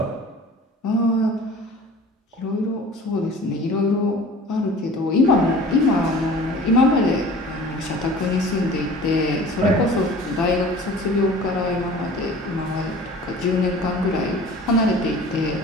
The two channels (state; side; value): normal; both; correlation 0.43